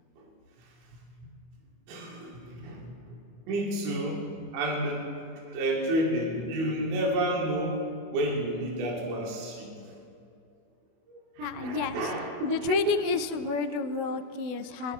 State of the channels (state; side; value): late; left; 24 ms